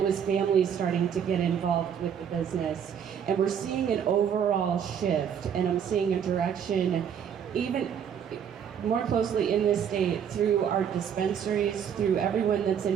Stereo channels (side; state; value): left; quieter; 8.2 dB